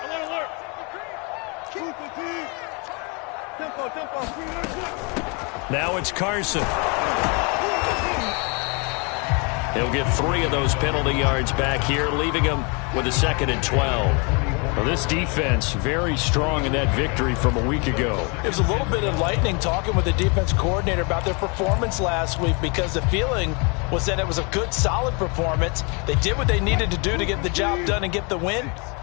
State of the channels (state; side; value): quieter; right; 32.4 dB